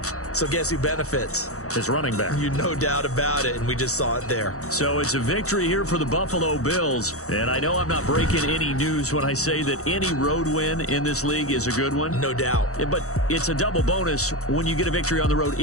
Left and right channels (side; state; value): right; late; 0.65 ms